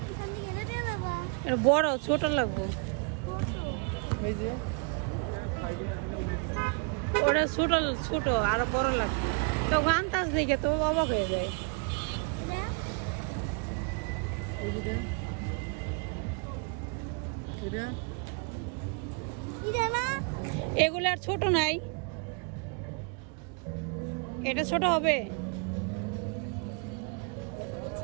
বড় ছোট লাগবো। ওটা ছোট ছোট আরো বড় লাগবে। তো আন্দাজ দেখে তো অবাক হয়ে যায়। এগুলো আর ছোট নাই, এটা ছোট হবে।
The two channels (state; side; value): quieter; left; 33.7 dB